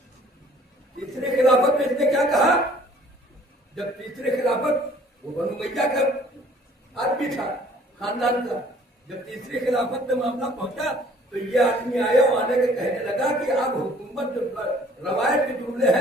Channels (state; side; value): normal; both; correlation 0.56